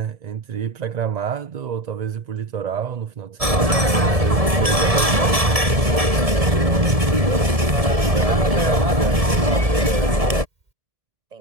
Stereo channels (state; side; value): late; left; 1.7 ms